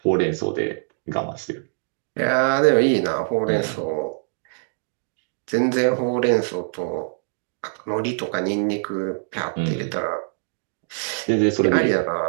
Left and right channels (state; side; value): silent; left; digital silence